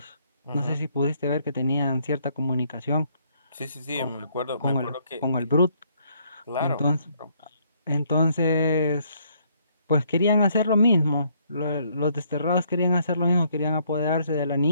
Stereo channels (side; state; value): both; inverted; correlation -0.68